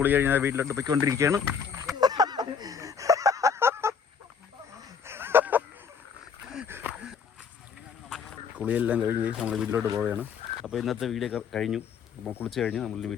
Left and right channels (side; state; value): right; quieter; 6.4 dB